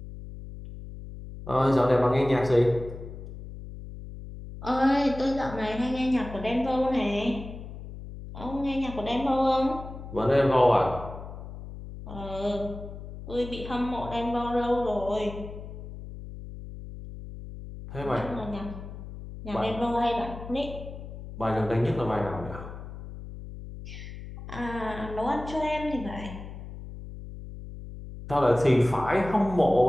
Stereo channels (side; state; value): left; noise; hum, 12 dB below the sound